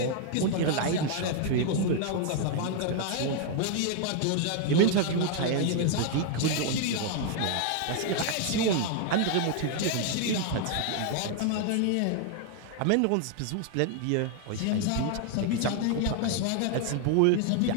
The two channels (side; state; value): both; different; correlation 0.00